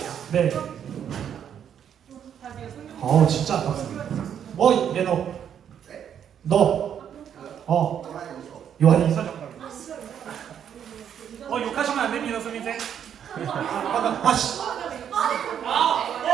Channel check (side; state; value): left; quieter; 8.9 dB